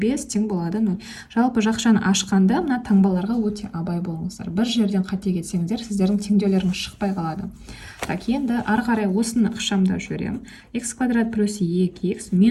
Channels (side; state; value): both; identical; correlation 1.00